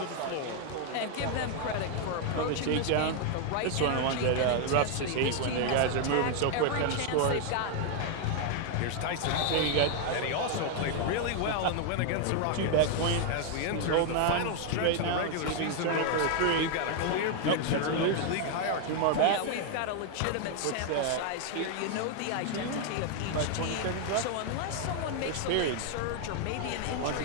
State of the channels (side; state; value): both; different; correlation 0.00